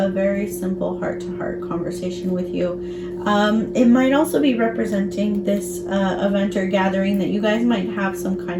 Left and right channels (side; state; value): both; identical; correlation 1.00